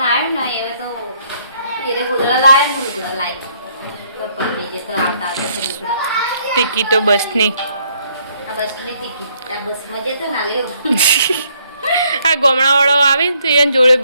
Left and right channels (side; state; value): both; inverted; correlation -0.68